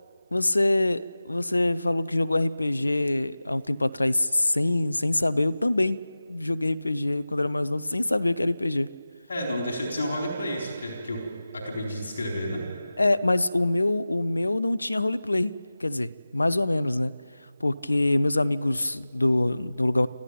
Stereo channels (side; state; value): both; inverted; correlation -0.96